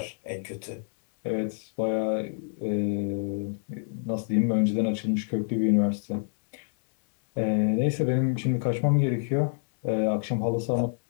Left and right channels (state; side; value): silent; right; 60 dB below the other